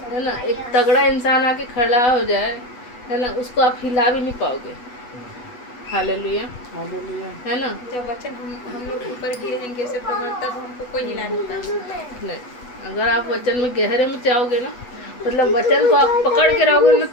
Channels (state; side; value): late; right; 8.1 ms